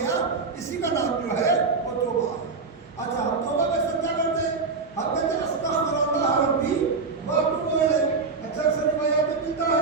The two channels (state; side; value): quieter; left; 4.4 dB